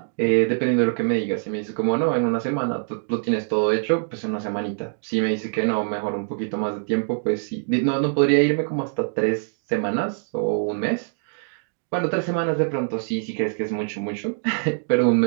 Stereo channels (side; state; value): left; silent; digital silence